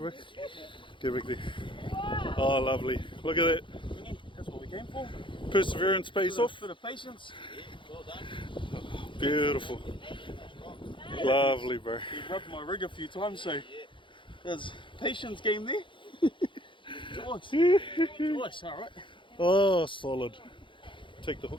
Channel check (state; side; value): late; right; 0.24 ms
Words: Go back there. Oh, lovely. Look at that. That's what we came for. Perseverance pays off. Bit of patience. Well done. Beautiful. Lovely, bro. He rubbed my rig a few times, so There's patience game there. Twice, alright. Oh, solid. Take the